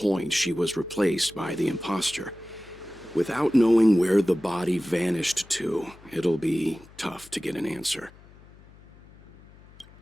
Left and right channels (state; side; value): noise; left; hum, 24 dB below the sound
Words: she was replaced by the imposter. Without knowing where the body vanished to, it'll be tough to get an answer.